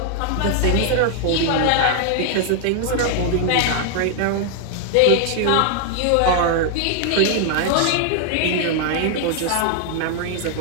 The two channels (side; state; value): both; different; correlation 0.00